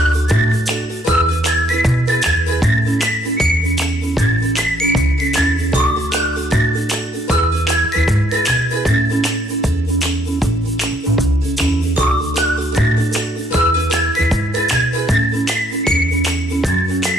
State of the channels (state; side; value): normal; both; correlation 0.68